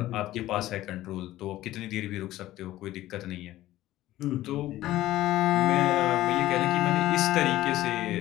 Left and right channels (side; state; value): right; quieter; 15.2 dB